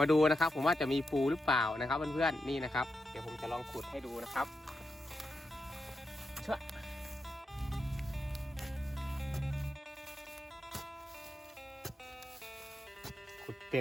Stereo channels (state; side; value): normal; both; correlation 0.87